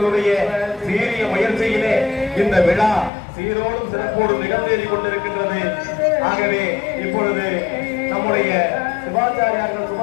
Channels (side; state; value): right; drops out; at 3.1 s